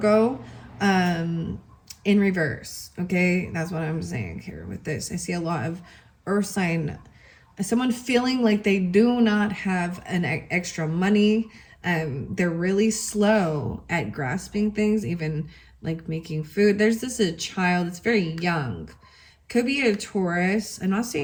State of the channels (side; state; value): both; identical; correlation 1.00